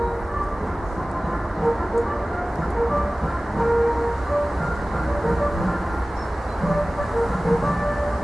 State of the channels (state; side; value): normal; both; correlation 0.97